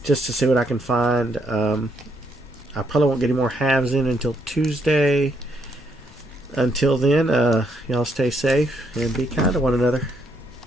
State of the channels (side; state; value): both; normal; correlation 0.74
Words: just to see what I can find. I probably won't get any more halves in until Tuesday. Until then, y'all stay safe and be kind to one another.